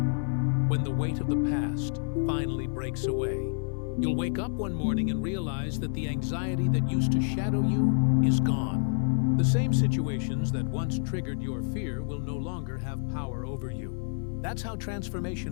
when the weight of the past finally breaks away. You'll wake up one morning and realize that the anxiety that used to shadow you is gone. The same situations that once triggered your fear will no longer have power over you. That's how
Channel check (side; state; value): right; silent; 56 dB below the other